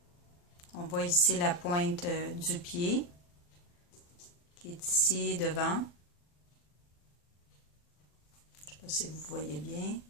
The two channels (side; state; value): right; late; 40 ms